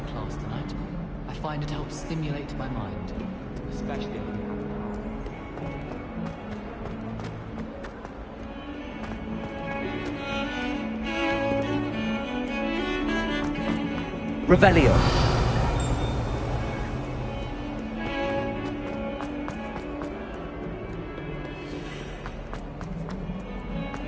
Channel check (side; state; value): both; identical; correlation 1.00